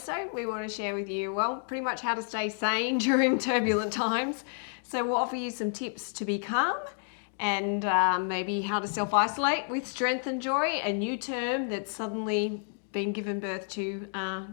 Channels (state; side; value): silent; right; 58 dB below the other